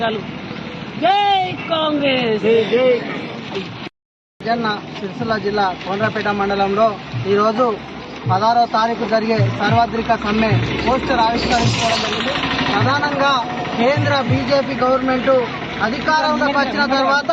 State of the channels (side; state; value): both; identical; correlation 1.00